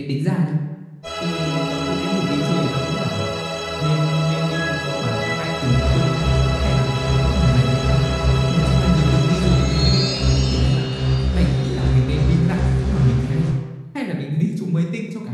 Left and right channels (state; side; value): identical; both; correlation 1.00